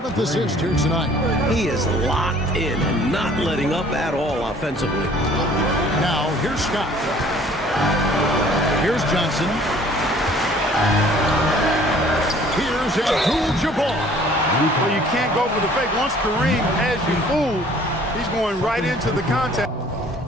assist here tonight. He is locked in and not letting up at all offensively. Now, here's Scott. Here's Johnson. Here's Abdul-Jabbar. Well, you can't go for the fake. Once Kareem has you fooled, he's going right into the contact.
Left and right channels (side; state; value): both; normal; correlation 0.54